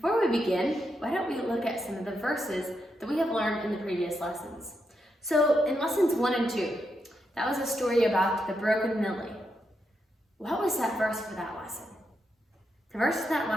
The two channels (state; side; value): normal; both; correlation 0.83